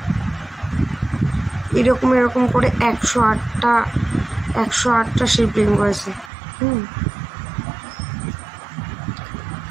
এরকম করে 108টা শিবলিঙ্গ আছে।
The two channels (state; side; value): drops out; left; at 6.3 s